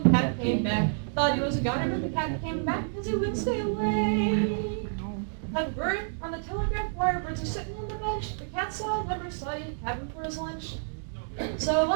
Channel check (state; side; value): silent; left; digital silence